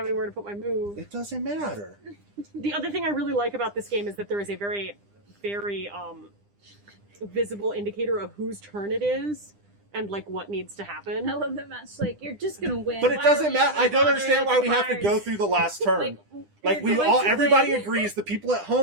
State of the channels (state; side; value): late; left; 9.9 ms